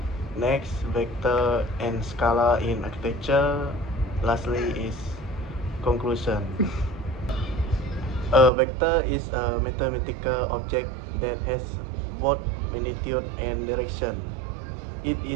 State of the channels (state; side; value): drops out; left; at 8.5 s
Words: next vector and scalar in architecture, lastly is conclusion. A vector is a mathematical object that has both magnitude and direction. It